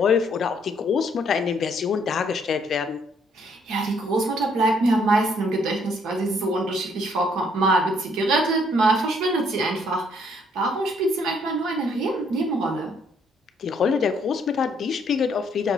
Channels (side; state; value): both; normal; correlation 0.67